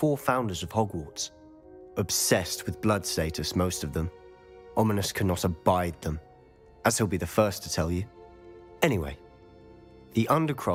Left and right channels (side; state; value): both; identical; correlation 1.00